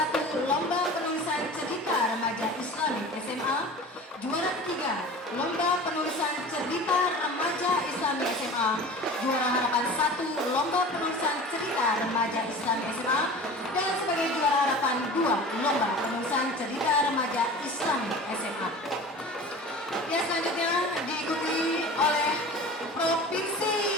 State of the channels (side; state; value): both; normal; correlation 0.38